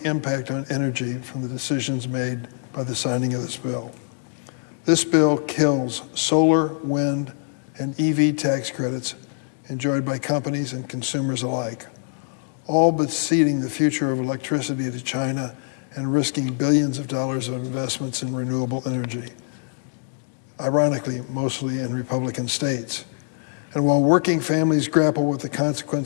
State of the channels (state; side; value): silent; right; digital silence